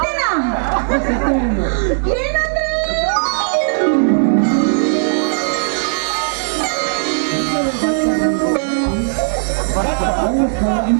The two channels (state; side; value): silent; left; digital silence